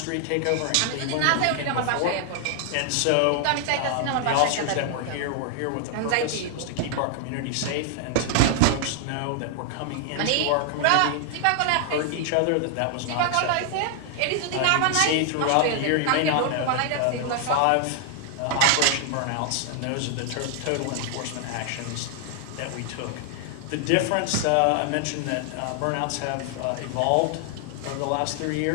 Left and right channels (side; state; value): both; different; correlation 0.00